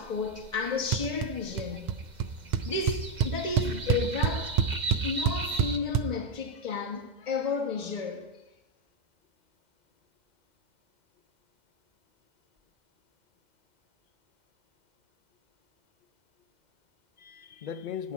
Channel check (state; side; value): late; left; 2.0 ms